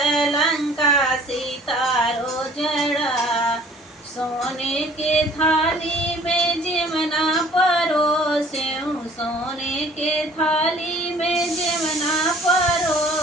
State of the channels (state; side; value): normal; both; correlation 0.53